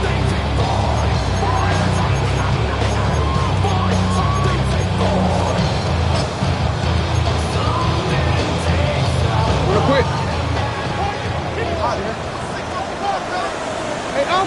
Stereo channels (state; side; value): identical; both; correlation 1.00